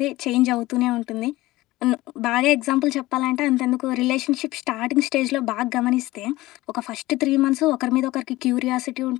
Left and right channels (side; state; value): right; quieter; 18.4 dB